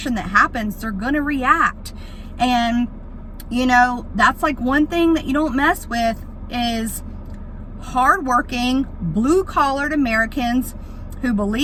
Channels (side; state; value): both; identical; correlation 1.00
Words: that happens. They're going to react. And, that's like one thing that you don't mess with is hardworking, blue-collared Americans who